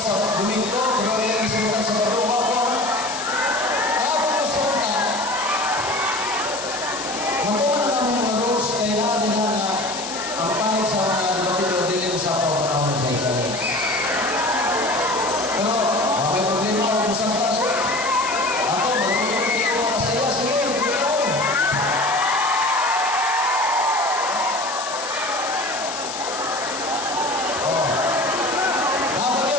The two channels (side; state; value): left; noise; hiss, 8 dB below the sound